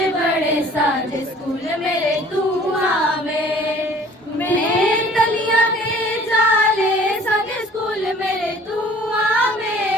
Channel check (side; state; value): both; normal; correlation 0.51